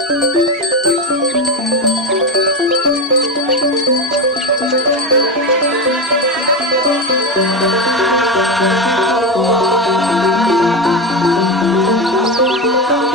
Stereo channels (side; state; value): both; normal; correlation 0.15